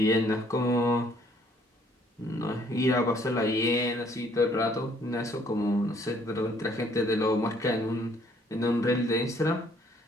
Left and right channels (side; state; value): both; normal; correlation 0.63